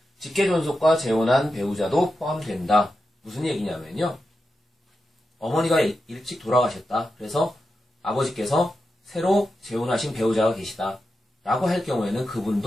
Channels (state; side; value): normal; both; correlation 0.89